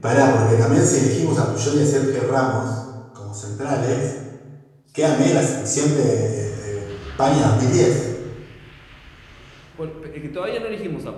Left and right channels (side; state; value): both; identical; correlation 1.00